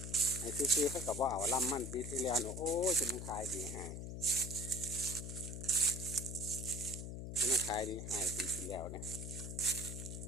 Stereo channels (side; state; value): left; noise; hum, 6 dB below the sound